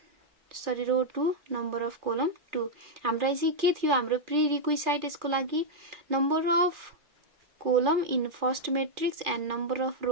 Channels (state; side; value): late; left; 2.4 ms